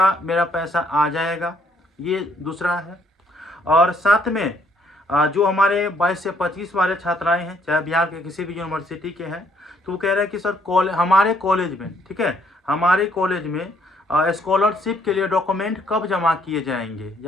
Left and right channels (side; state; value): both; normal; correlation 0.67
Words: मेरा पैसा आ जाएगा, ये दूसरा है। और साथ में जो हमारे 22 से 25 वाले छात्राएं हैं, चाहे बिहार के किसी भी यूनिवर्सिटी के हैं, तो वो कह रहे हैं कि सर हमारे कॉलेज में, ठीक है, हमारे कॉलेज में स्कॉलरशिप के लिए डॉक्यूमेंट कब जमा किए जाएंगे